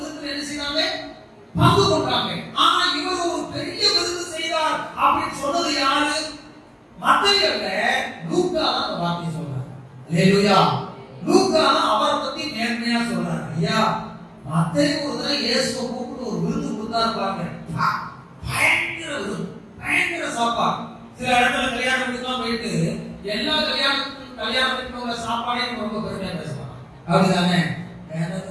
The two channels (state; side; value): identical; both; correlation 1.00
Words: விருந்தில் என்ன செய்தாங்க? பங்கு கொண்டாங்க. ஆனா இவர் ஒரு பெரிய விருந்து செய்தார் அப்படின்னு சொன்னது யாரு? மத்தேயு அல்ல, லூக்கா தான் அந்த வார்த்தையை சொல்றார். அல்லேலூயா. லூக்கா தான் அவரை பத்தி நேர்மையா சொல்றார். ஐயா மத்தேயு ஒரு தடவை இயேசுவை கூப்பிட்டு ஒரு விருந்து கொடுத்தாரு பாருங்க, பயங்கர விருந்து, பயங்கர சாப்பாடு. சில இடத்துல கல்யாணம் வீட்டுக்குலாம் போயிட்டு எல்லா கல்யாணத்துக்கு உள்ள சாப்பாடையும் ரொம்ப பெருமையா பேசுவாங்க. அப்படிதானே? வேறத